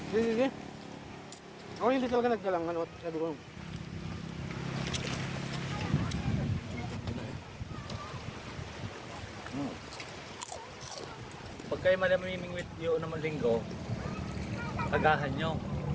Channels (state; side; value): identical; both; correlation 1.00